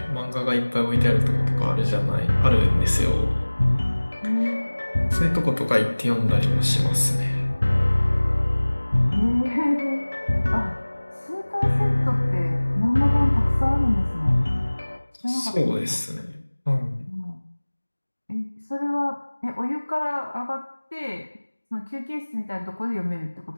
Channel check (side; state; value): both; inverted; correlation -1.00